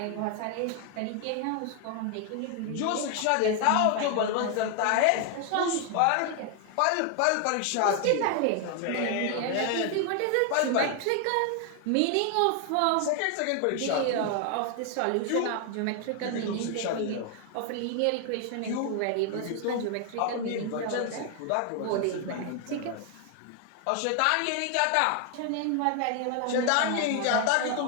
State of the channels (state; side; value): different; both; correlation 0.00